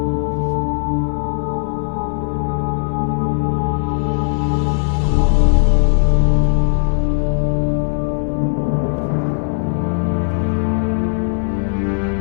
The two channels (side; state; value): right; silent; 61 dB below the other